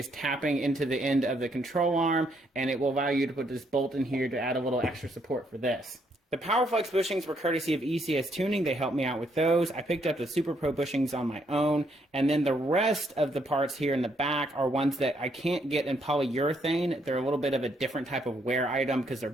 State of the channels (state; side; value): normal; both; correlation 0.72